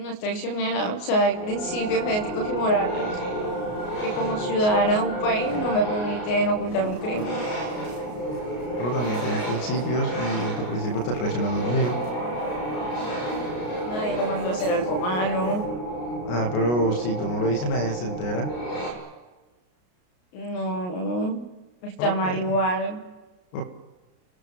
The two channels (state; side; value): late; right; 33 ms